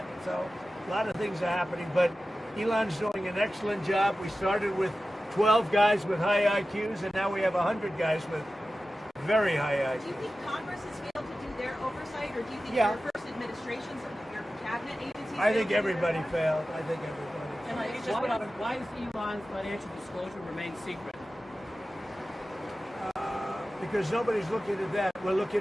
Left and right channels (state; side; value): normal; both; correlation 0.94